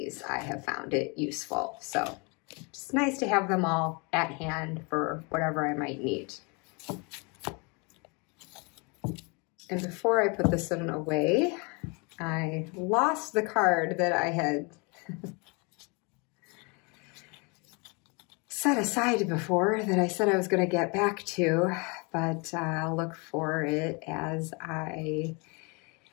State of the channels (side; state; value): right; quieter; 31.0 dB